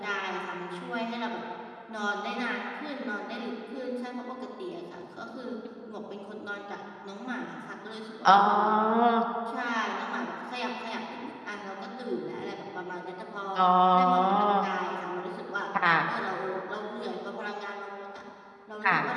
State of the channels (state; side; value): identical; both; correlation 1.00